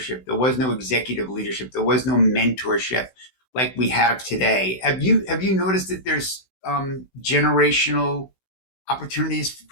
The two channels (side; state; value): right; late; 16 ms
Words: There was no executive leadership. There was no mentorship like we have today. Have you noticed that there's generational opportunities